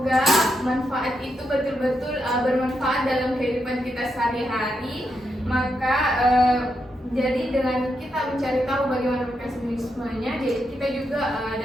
manfaat itu betul-betul bermanfaat dalam kehidupan kita sehari-hari. Maka jadi dengan kita mencari tahu bagaimana mekanismenya, jadi kita juga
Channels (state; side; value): normal; both; correlation 0.83